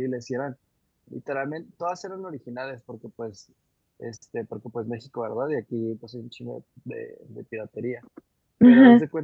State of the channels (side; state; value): both; identical; correlation 1.00